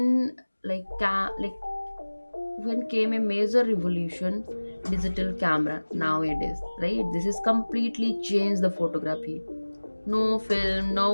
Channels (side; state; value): both; inverted; correlation -1.00